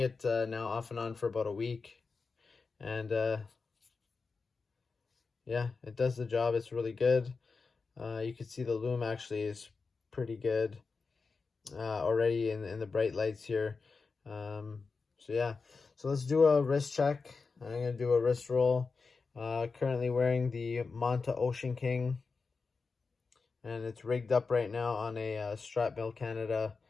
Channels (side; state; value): right; quieter; 4.5 dB